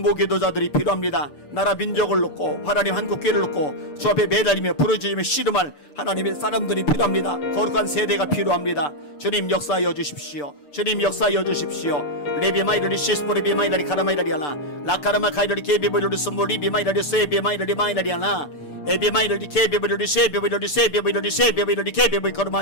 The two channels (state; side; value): late; right; 6.8 ms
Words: 필요합니다. 나라 민족을 놓고 하나님 한국교회를 놓고 주 앞에 매달리며 부르짖으며 씨름할 하나님의 사람들이 필요합니다. 거룩한 세대가 필요합니다. 주님 역사하여 주십시오. 주님 역사하여 주십시오. 레비마이라리 시스포리비마이라리 카라마이라리아나 라카라마 카이라리 케비보리르 스몰리비마이라리 세비마이라리 마이라리아나 에비마이라리 케비보리르 세비보리르 세비보리르 세비보리르 케비보리